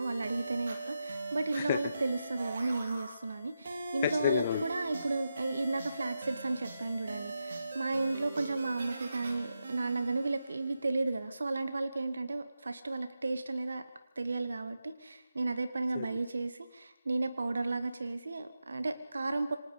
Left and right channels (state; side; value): inverted; both; correlation -0.88